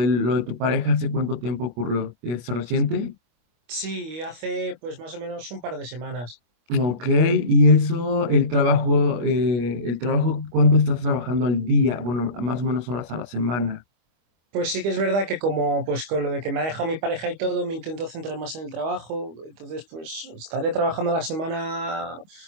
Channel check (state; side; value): late; left; 25 ms